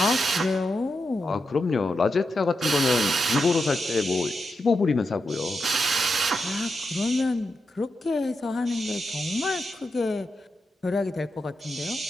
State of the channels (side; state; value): both; normal; correlation 0.86